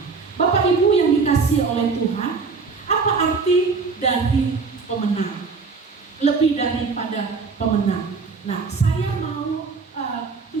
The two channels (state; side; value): quieter; left; 4.7 dB